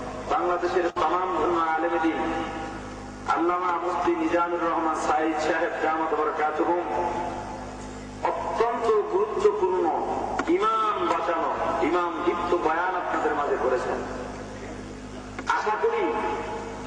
বাংলাদেশের তামাম আলেমে দ্বীন আল্লামা মুফতি মিজানুর রহমান সাঈদ সাহেব দামাত বরকাতুহুম অত্যন্ত গুরুত্বপূর্ণ ইমাম বাঁচানো, ইমাম দীপ্ত বয়ান আপনাদের মাঝে করেছেন। আশা করি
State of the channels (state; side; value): identical; both; correlation 1.00